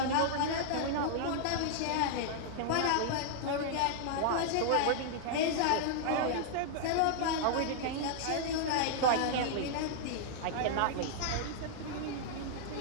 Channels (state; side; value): different; both; correlation -0.01